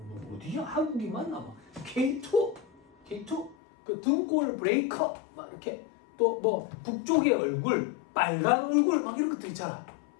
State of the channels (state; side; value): drops out; right; at 3.6 s